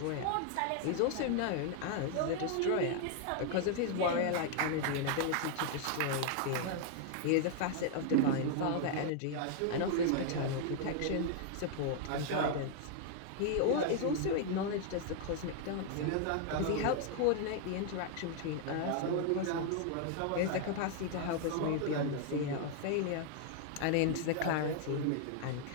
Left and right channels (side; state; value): both; different; correlation 0.00